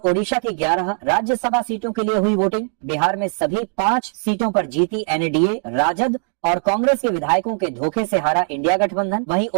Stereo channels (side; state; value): left; silent; 56 dB below the other